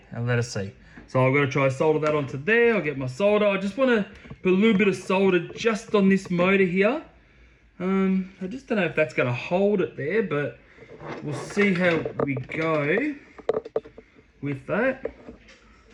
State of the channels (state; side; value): identical; both; correlation 1.00